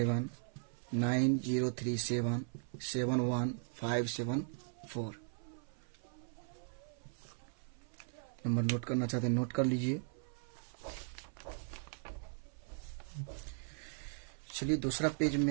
नंबर नोट करना चाहते हैं नोट कर लीजिए। चलिए दूसरा पेज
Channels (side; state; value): left; silent; 52 dB below the other